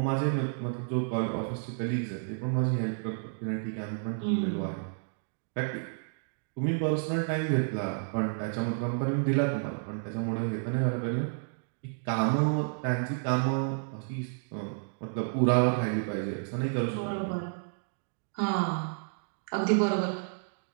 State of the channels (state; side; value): silent; left; digital silence